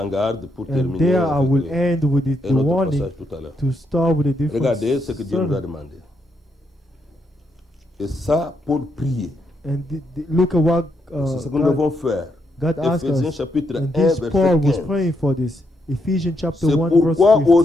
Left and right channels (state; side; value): normal; both; correlation 0.79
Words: garde pour And terminer there I will avec end with the un autre warning passage tout à l'heure. to start with a different Regardez ce que Dieu nous a sermon. demandé. Et ça, pour prier. And look at what C'est ce que nous devons faire. God asked Éphésiens us. chapitre 1, And this verset Paul was 15. praying for this. Ephesians chapter C'est 1, verse pourquoi 15.